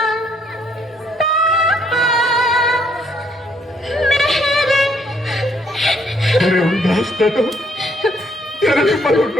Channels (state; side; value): normal; both; correlation 0.68